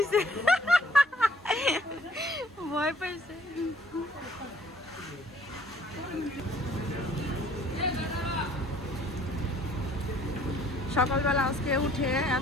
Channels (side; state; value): both; normal; correlation 0.59